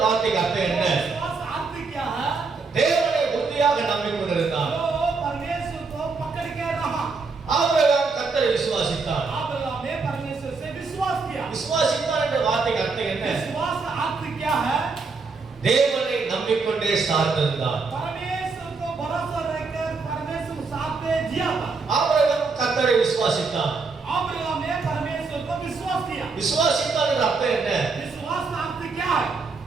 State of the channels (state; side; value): quieter; left; 4.4 dB